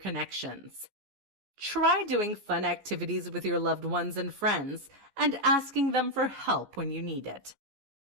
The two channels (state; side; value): late; left; 14 ms